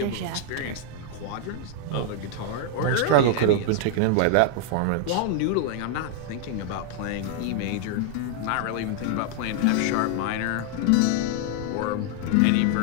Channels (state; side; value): different; both; correlation 0.00